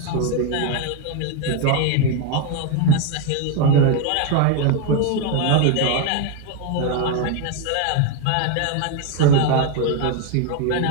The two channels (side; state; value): both; different; correlation 0.01